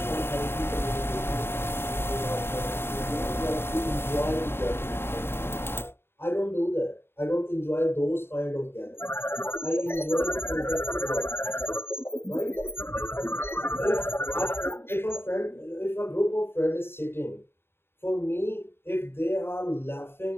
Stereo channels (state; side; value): late; right; 0.11 ms